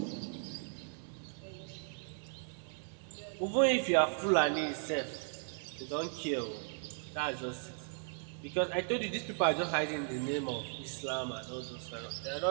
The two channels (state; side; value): silent; left; 53 dB below the other